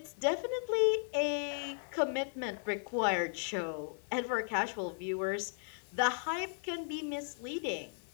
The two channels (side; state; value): right; silent; digital silence